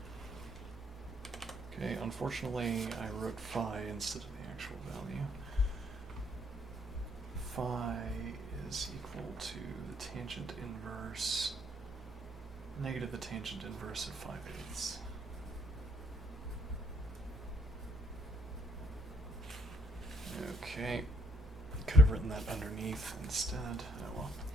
Okay, unfortunately I wrote phi instead of the actual value. Phi is equal to the tangent inverse, negative the tangent inverse of 5/8. Okay, could have written that underneath instead. Oh well.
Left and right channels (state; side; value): normal; both; correlation 0.69